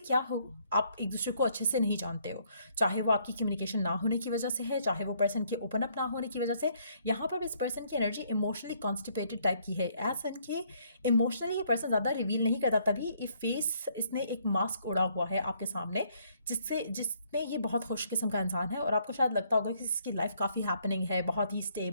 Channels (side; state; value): both; inverted; correlation -0.67